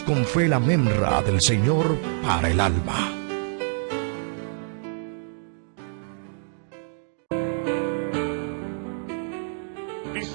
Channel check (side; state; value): left; silent; digital silence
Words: con fe la memra del Señor para el alma.